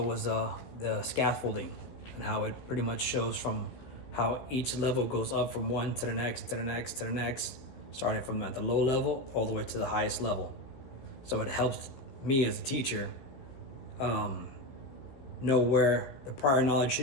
the scaffolding and how it pretty much shows from how each level goes up from one to the next, to the next, to the next, starting from at the low level all the way to the highest level. So it helps me as a teacher know where the prior knowledge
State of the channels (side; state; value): right; late; 15 ms